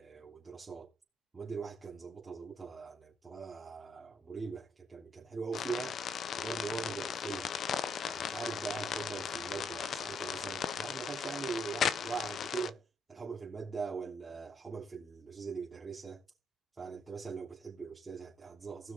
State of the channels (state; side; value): normal; both; correlation 0.73